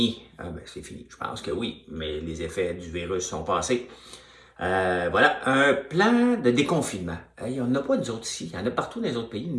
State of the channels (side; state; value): both; identical; correlation 1.00